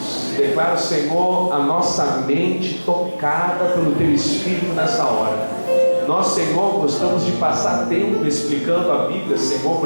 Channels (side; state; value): both; inverted; correlation -1.00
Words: Declaro, Senhor, a nossa mente tocada pelo Teu Espírito nessa hora. Nós, Senhor, gostamos de passar tempo explicando a Bíblia, Senhor,